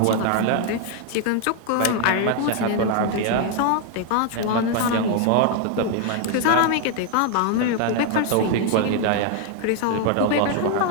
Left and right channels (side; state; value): both; different; correlation 0.00